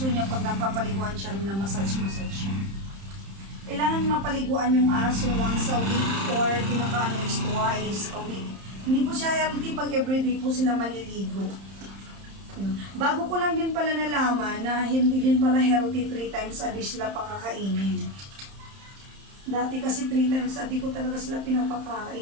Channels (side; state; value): left; late; 31 ms